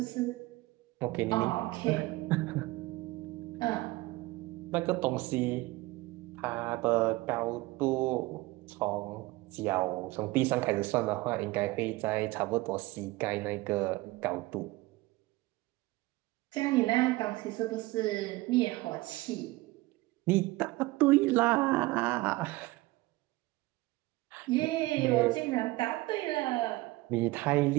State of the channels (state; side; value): quieter; left; 20.3 dB